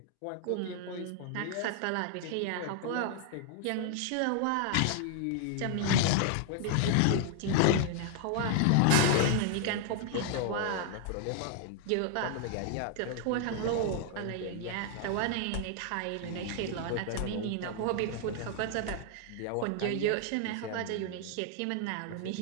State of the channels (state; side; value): different; both; correlation 0.00